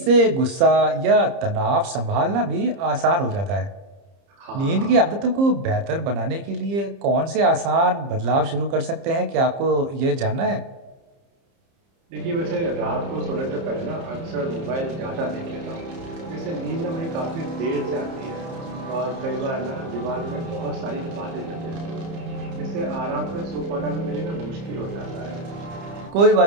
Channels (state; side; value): late; left; 30 ms